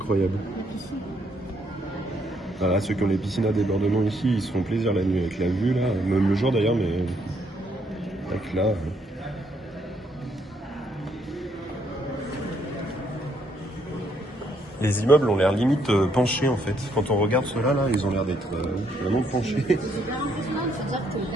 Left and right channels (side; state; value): both; normal; correlation 0.72